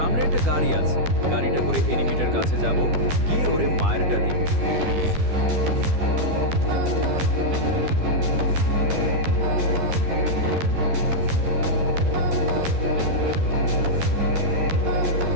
একটা গাড়ি আছে, গাড়িটা করে এনিমিটার কাছে যাব, গিয়ে ওরে মায়েরটা দিব।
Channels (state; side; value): late; left; 12 ms